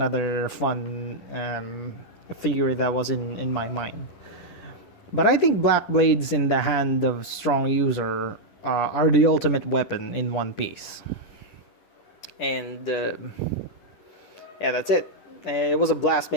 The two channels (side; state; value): right; late; 10 ms